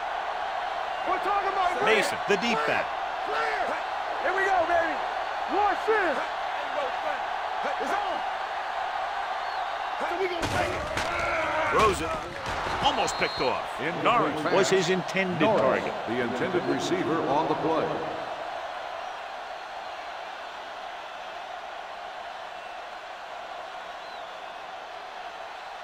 We're talking about Mason, the deep back. Here we go, baby. One sin. It's on. So we gonna take it. Throws it. almost picked off. Incomplete Norris pass. was his intended Norris, target. the intended receiver on the play.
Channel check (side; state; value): both; identical; correlation 1.00